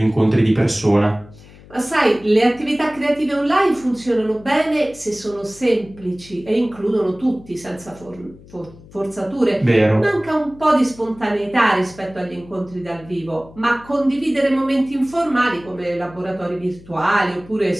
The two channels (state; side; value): noise; left; hum, 22 dB below the sound